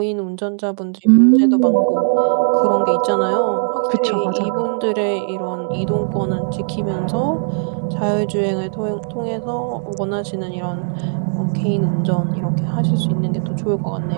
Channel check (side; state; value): left; silent; 63 dB below the other